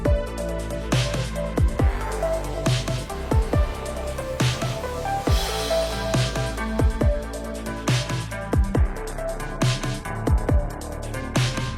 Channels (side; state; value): both; identical; correlation 1.00